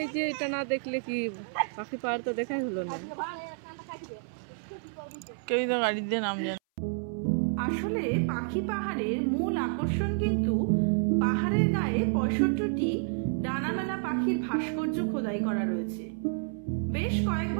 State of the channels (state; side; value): silent; left; 58 dB below the other